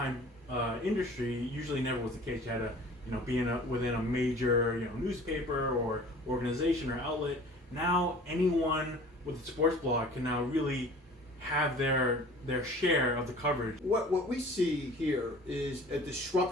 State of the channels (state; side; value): normal; both; correlation 0.46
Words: industry usually never was the case. You had to be within a major newspaper or organization or outlet. Now anyone with a sports blog can now really have their share of the coverage. What we see here is a